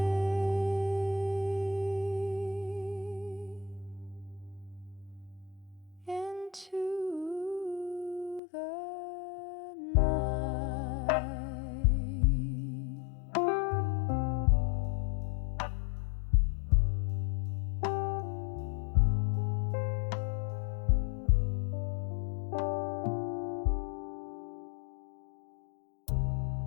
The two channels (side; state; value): right; drops out; at 8.4 s